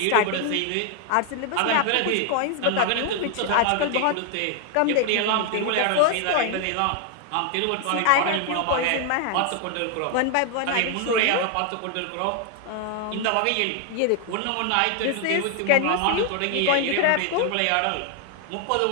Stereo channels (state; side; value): different; both; correlation 0.00